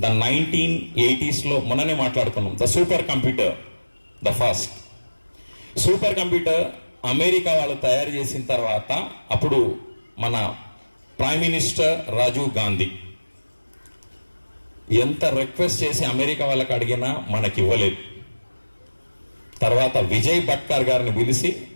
ద 1980s మొన్ననే మాట్లాడుకున్నాం. The super computer, the first super computer America వాళ్ళు తయారు చేసిన తర్వాత అప్పుడు మన ప్రైమ్ మినిస్టర్ రాజీవ్ గాంధీ ఎంత రిక్వెస్ట్ చేసి అమెరికా వాళ్ళకి అడిగినా మనకి ఇవ్వలేదు. తర్వాత విజయ్ భట్కర్ గారిని పిలిచి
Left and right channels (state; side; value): inverted; both; correlation -1.00